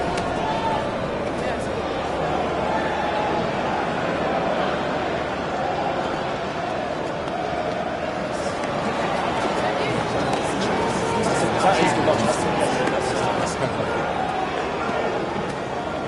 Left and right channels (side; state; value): both; identical; correlation 1.00